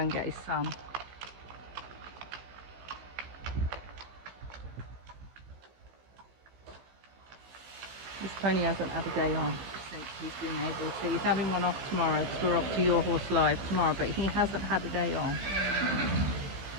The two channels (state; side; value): late; left; 15 ms